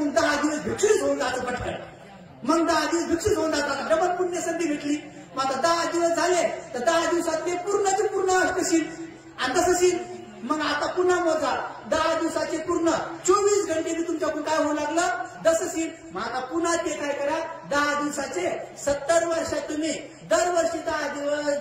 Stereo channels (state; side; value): identical; both; correlation 1.00